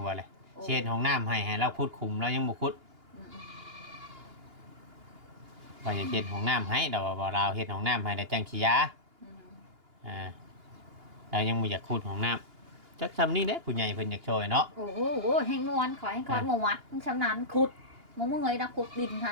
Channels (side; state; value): left; late; 2.8 ms